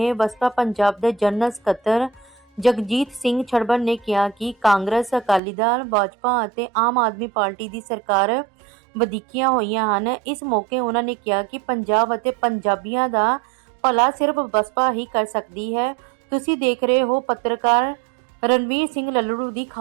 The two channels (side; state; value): left; drops out; at 5.4 s